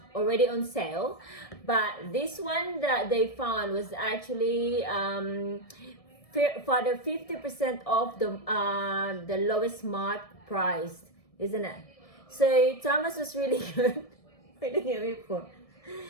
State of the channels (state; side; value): late; right; 1.7 ms